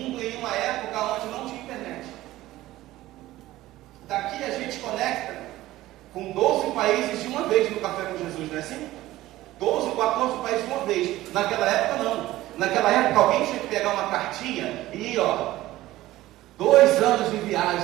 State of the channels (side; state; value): left; quieter; 16.2 dB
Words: em uma época onde não tinha internet. Daqui a gente conecta com 12 países de uma vez no Café com Jesus, não é assim? 12, 14 países de uma vez. Naquela época não. Naquela época alguém tinha que pegar uma cartinha e ir, 2 anos de